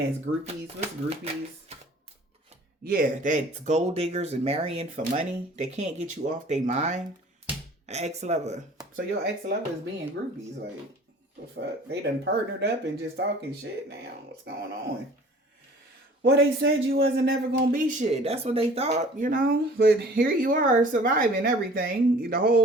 groupies. What's groupies? Yeah, that's gold diggers and marrying for money. They can't get you off their mind. An ex-lover. So your ex-lover is being groupies. Like, the fuck? They done partnered up and just talking shit now. What's going on? Well, they said you wasn't ever going to be shit. That's what they thought, you know? But here you are surviving everything. The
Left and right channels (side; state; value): both; normal; correlation 0.49